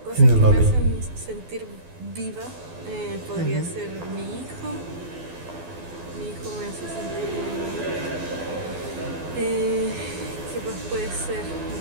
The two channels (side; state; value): left; late; 12 ms